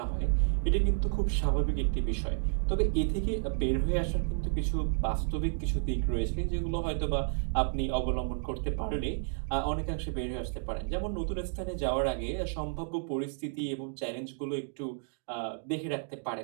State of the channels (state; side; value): silent; left; digital silence